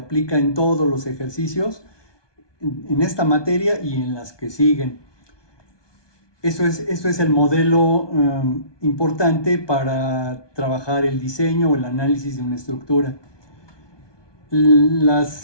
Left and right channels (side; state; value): right; late; 1.2 ms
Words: en todos los ejercicios, en esta materia y en las que siguen. Esto es el modelo importante para trabajar el diseño o el análisis de una estructura.